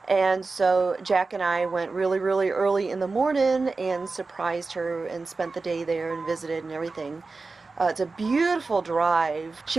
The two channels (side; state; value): left; quieter; 3.9 dB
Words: And so Jack and I went really, really early in the morning and surprised her and spent the day there and visited and everything. It's a beautiful drive.